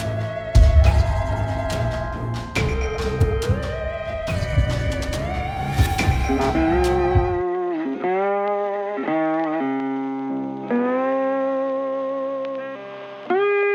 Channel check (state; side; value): identical; both; correlation 1.00